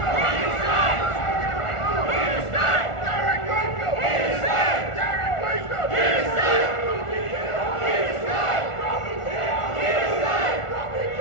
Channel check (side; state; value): right; late; 1.4 ms